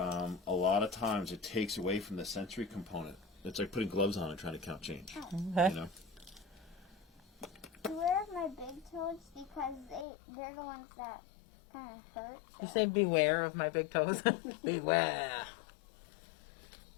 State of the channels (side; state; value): right; drops out; at 10.1 s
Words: lot of times it takes away from the sensory component. It's like putting gloves on and trying to count change. Okay. You know? Beware of my big toes because they're the ones that kind of hurt. You say beware of my big toes. Beware.